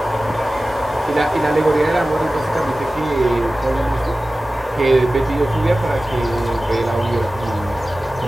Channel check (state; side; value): normal; both; correlation 0.96